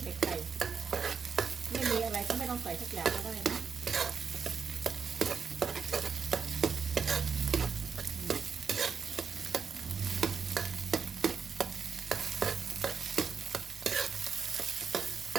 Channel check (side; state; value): left; quieter; 6.1 dB